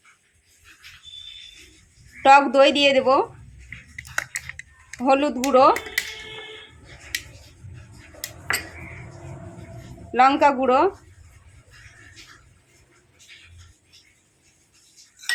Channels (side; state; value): both; identical; correlation 1.00